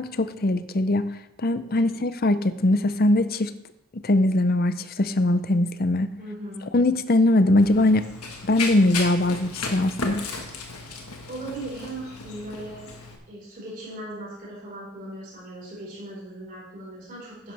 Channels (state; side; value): normal; both; correlation 0.67